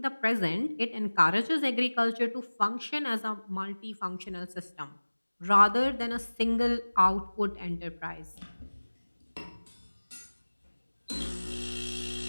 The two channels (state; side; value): inverted; both; correlation -1.00